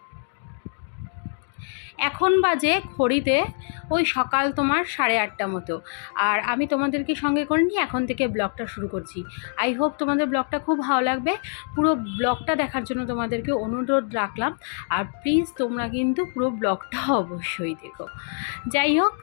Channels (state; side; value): silent; right; 57 dB below the other